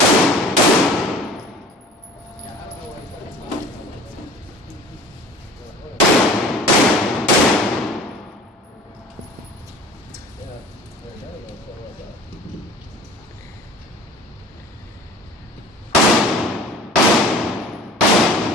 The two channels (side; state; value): both; normal; correlation 0.44